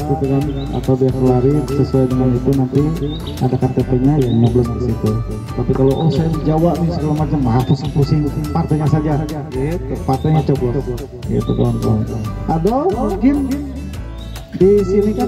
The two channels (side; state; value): both; identical; correlation 1.00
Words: gitu kan, atau dia kelari sesuai dengan itu, nanti ada KTP-nya ya nyoblos di situ. Tapi kalau saya di Jawa nih segala macam, pusing-pusing partainya saja, gitu, partainya coblos, gitu kawan-kawan. Ada mungkin di sini